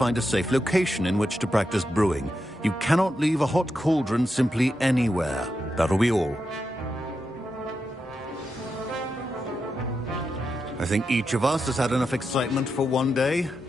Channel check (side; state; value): both; normal; correlation 0.86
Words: a safe location in which to practice brewing. You cannot leave a hot cauldron simply anywhere. That'll be all. I think each of us has had enough excitement for one day.